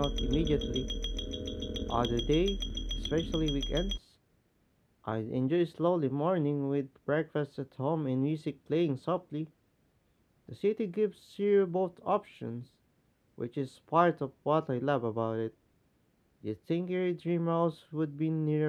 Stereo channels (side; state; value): both; identical; correlation 1.00